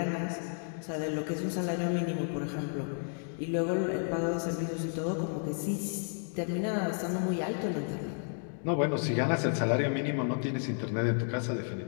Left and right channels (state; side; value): silent; right; 56 dB below the other